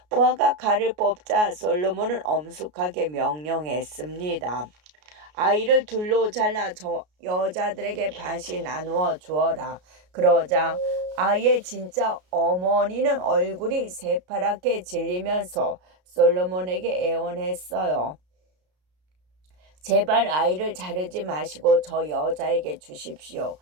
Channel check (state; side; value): late; left; 33 ms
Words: 부하가 칼을 뽑자 솔로몬은 엄숙하게 명령했습니다. 아이를 둘로 잘라 저 여자들에게 반씩 나누어 주어라. 그러자 아이의 진짜 어머니는 얼굴이 새파랗게 질리면서 솔로몬에게 애원했어요. 제발 아이를 자르지 마시고 저 여자에게 주십시오.